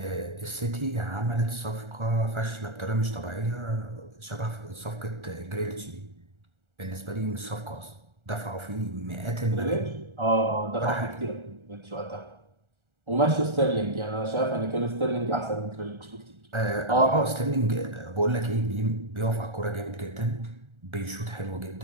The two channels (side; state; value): left; late; 1.4 ms